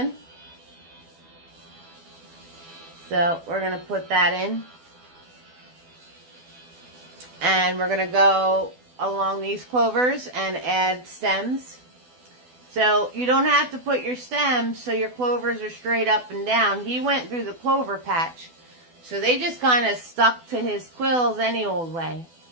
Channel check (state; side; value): late; left; 12 ms